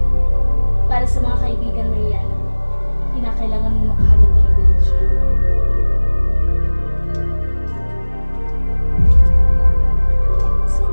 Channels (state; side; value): inverted; both; correlation -1.00